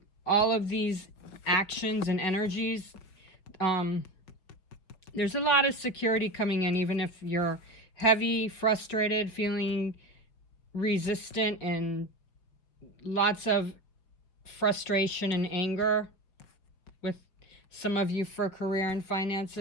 all of these actions and energies. There's a lot of security coming in, even if you're heavy, frustrated, feeling resistant, and lots of frustration and anger with some of you for career and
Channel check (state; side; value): late; right; 5.2 ms